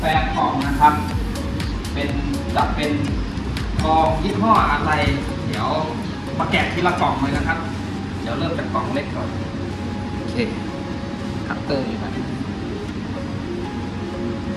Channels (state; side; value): identical; both; correlation 1.00